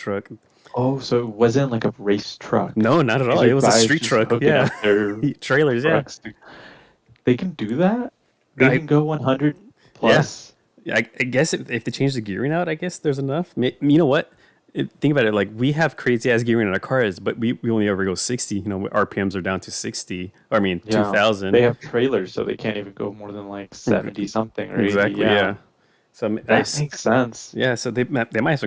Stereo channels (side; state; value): both; identical; correlation 1.00